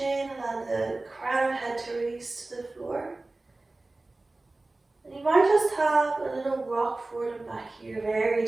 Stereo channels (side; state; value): left; quieter; 3.0 dB